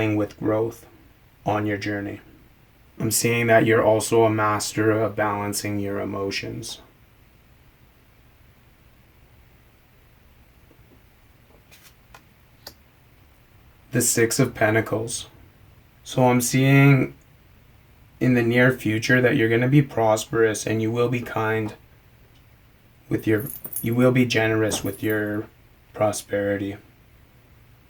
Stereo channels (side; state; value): both; identical; correlation 1.00